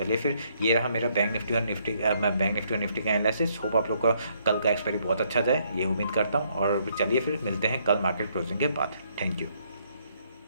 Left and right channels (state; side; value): inverted; both; correlation -0.70